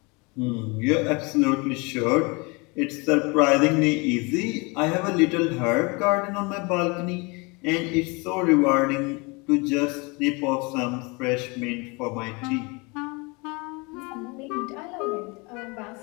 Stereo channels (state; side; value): quieter; right; 28.1 dB